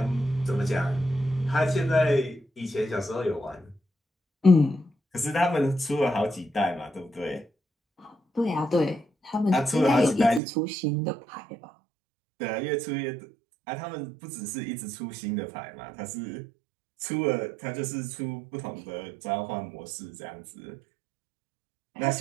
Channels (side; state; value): left; drops out; at 10.4 s